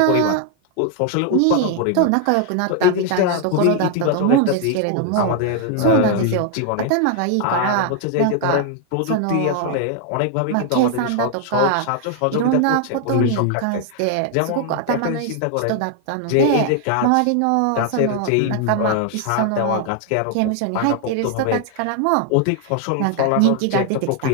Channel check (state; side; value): different; both; correlation 0.00